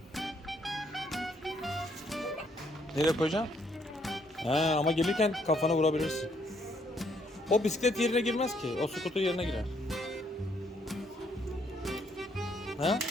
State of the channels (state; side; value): normal; both; correlation 0.70